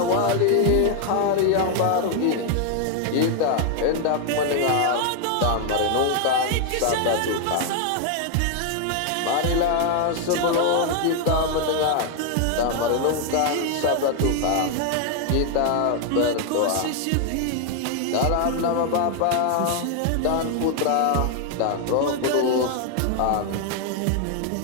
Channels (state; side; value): different; both; correlation 0.00